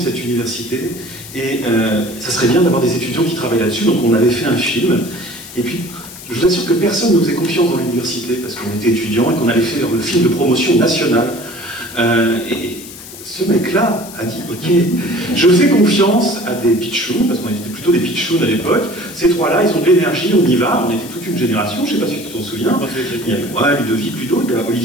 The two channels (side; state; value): left; noise; hiss, 15 dB below the sound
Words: cette université. Et ça serait bien d'avoir des étudiants qui travaillent là-dessus. Donc on avait fait un film. Et puis, je vous assure que personne ne nous faisait confiance dans l'université parce qu'on était étudiants et qu'on allait faire le film de promotion nationale. Et ce mec-là a dit, ok, je fais confiance à des pitchouns, parce qu'on était plutôt des pitchouns à l'époque. Ces trois-là, ils ont de l'énergie, on y va. On était toute une génération, je ne sais pas si tu t'en souviens. Il y a moi, Ludovic, Ludo, il y a